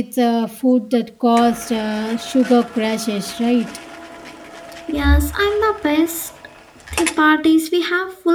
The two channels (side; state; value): both; identical; correlation 1.00